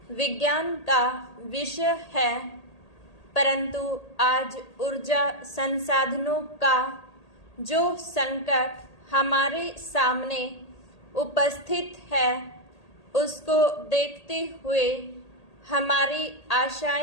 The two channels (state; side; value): late; right; 1.8 ms